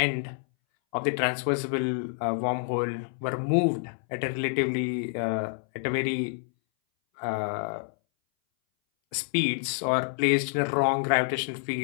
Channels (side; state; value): right; silent; 60 dB below the other